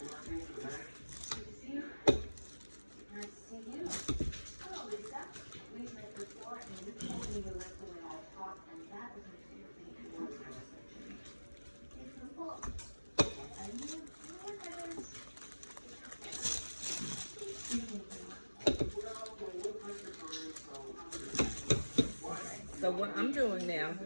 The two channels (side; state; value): both; inverted; correlation -1.00